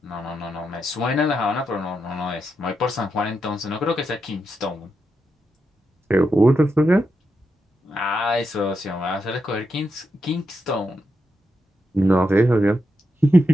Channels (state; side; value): normal; both; correlation 0.85